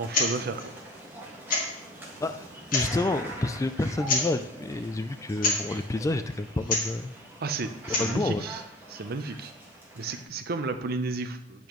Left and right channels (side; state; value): both; normal; correlation 0.43